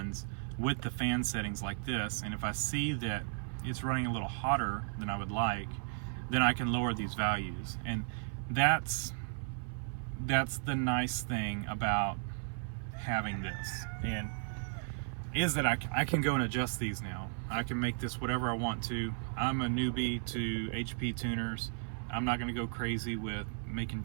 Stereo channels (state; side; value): silent; left; 54 dB below the other